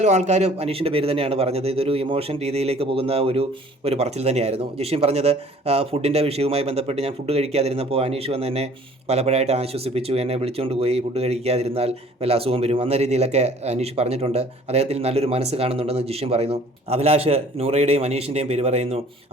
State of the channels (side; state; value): both; normal; correlation 0.53